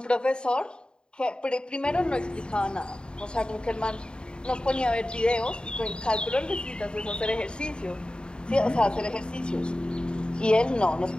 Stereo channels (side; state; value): right; late; 0.050 ms